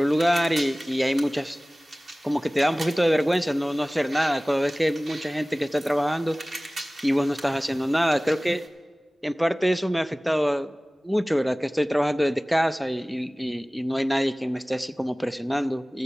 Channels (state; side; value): normal; both; correlation 0.98